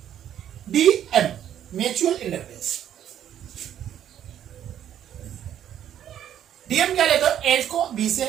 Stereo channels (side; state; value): left; quieter; 10.5 dB